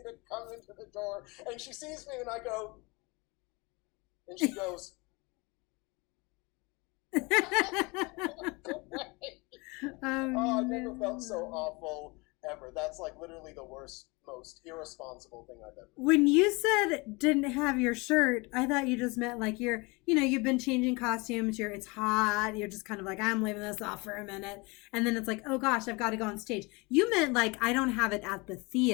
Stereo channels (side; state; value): right; quieter; 26.6 dB